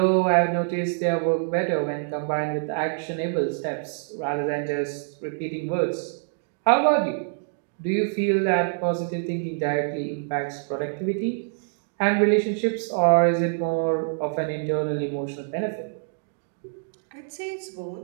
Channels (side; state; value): left; silent; digital silence